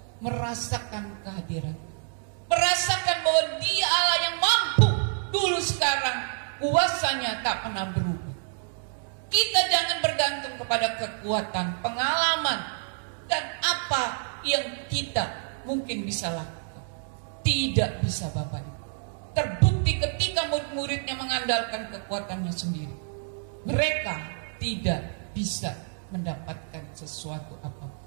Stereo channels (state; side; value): silent; left; 59 dB below the other